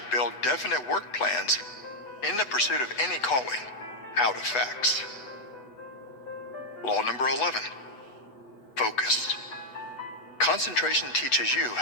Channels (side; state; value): right; late; 8.0 ms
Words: build definite work plans in the pursuit of any calling out of facts. Law number 11. Focus. Concentration teaches you